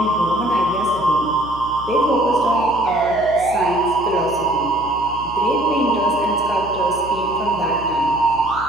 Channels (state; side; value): noise; right; hum, 15 dB below the sound